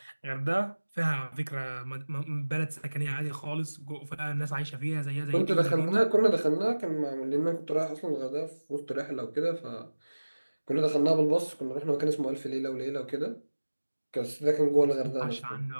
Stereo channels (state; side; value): inverted; both; correlation -1.00